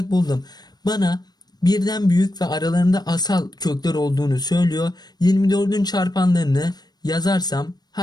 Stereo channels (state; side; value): late; right; 0.19 ms